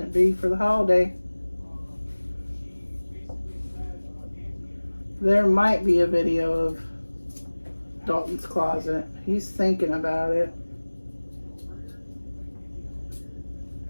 be for the holiday. There might be a video of Dalton's closet. He's thinking about it.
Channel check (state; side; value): inverted; both; correlation -1.00